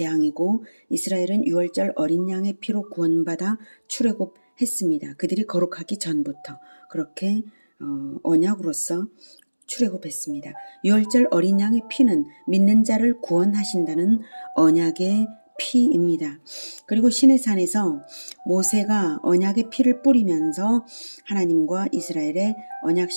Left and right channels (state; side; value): inverted; both; correlation -1.00